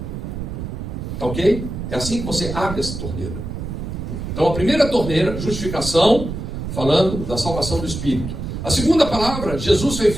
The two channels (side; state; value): right; noise; rumble, 6 dB below the sound